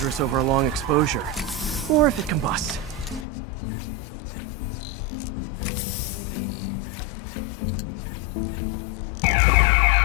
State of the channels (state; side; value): drops out; right; at 3.2 s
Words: over a long exposure. Or if it combusts. Maybe...